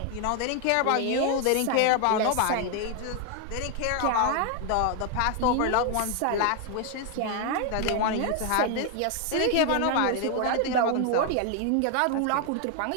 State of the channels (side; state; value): both; different; correlation 0.00